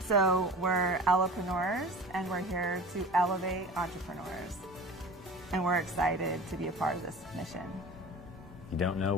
So we're entrepreneurs, and we're here to elevate entrepreneurs. And we're excited to be a part of this mission. You don't know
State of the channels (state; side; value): normal; both; correlation 0.38